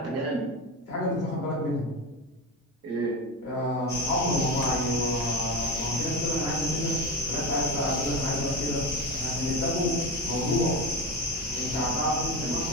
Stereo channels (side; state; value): both; normal; correlation 0.22